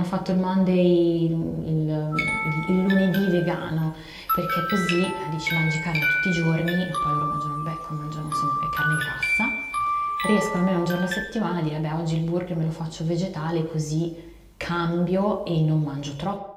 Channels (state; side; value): identical; both; correlation 1.00